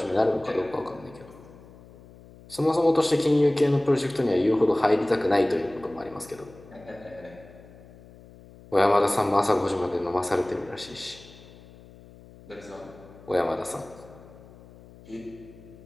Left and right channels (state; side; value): noise; left; hum, 21 dB below the sound